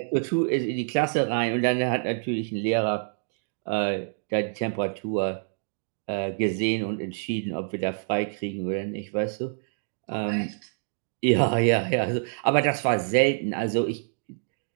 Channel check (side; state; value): left; silent; digital silence